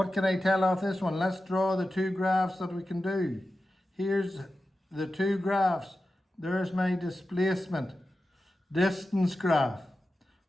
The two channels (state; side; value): normal; both; correlation 0.93